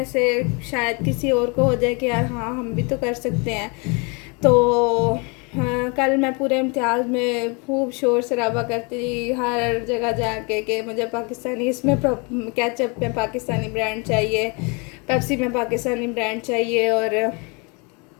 से शायद किसी और को हो जाए कि यार हाँ हम भी तो कर सकते हैं। तो कल मैं पूरे इम्तिहान में खूब शोर शराबा करती हर जगह जाके कि मुझे पाकिस्तानी इसमें केचप में पाकिस्तानी ब्रांड चाहिए, पेप्सी में पाकिस्तानी ब्रांड चाहिए, और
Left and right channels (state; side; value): quieter; right; 31.6 dB